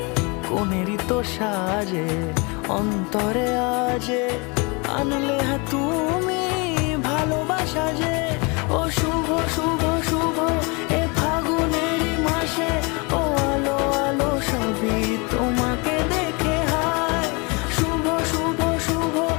কোনেরই তো সাজে অন্তরে আজে আনলে তুমি ভালোবাসা যে। ও শুভ শুভ শুভ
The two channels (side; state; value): right; quieter; 29.6 dB